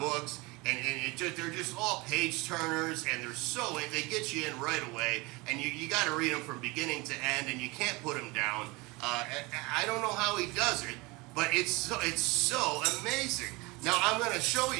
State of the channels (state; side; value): quieter; left; 24.7 dB